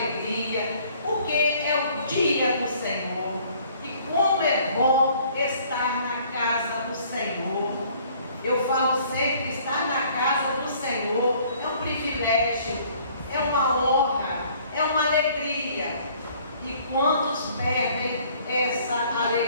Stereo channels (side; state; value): both; inverted; correlation -0.58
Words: porque é o dia do Senhor. E como é bom estar na casa do Senhor. Eu falo sempre, estar na casa do Senhor é um privilégio, é uma honra, é uma alegria. E quantos perdem essa